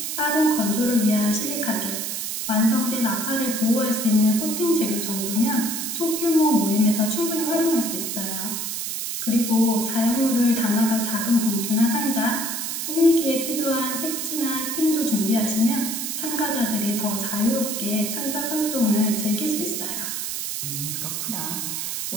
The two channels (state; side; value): noise; right; hiss, 3 dB below the sound